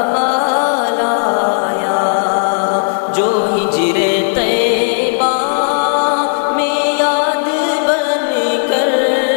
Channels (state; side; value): silent; right; digital silence